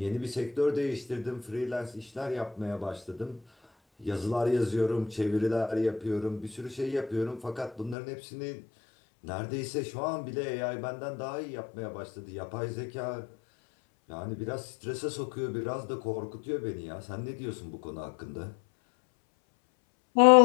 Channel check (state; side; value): drops out; right; at 8.0 s